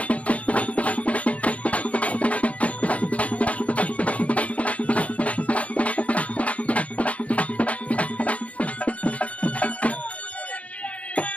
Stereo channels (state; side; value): late; right; 0.066 ms